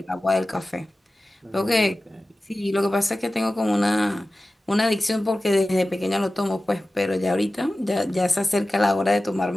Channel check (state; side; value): normal; both; correlation 0.95